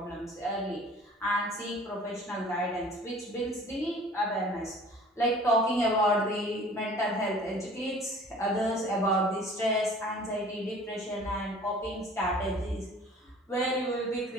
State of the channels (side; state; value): both; normal; correlation 0.48